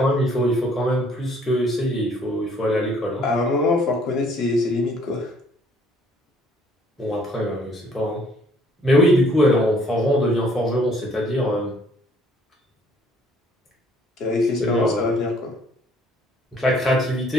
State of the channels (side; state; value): both; normal; correlation 0.61